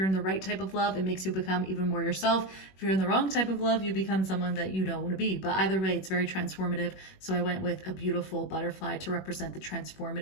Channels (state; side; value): late; right; 21 ms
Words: in the right type of love, it makes you become even more yourself. If you're in the wrong type of love, you become someone that you don't want to be. But either way, it's very transformative. So I went with a beautiful butterfly to represent the